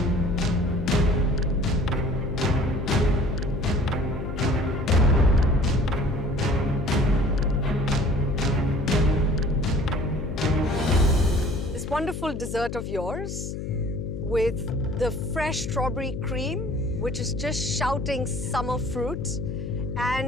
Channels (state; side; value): noise; left; hum, 6 dB below the sound